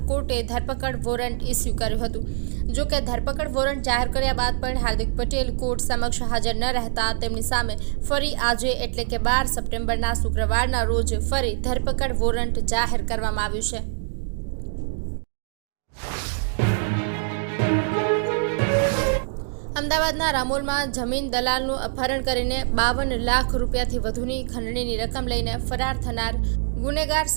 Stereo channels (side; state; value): left; silent; digital silence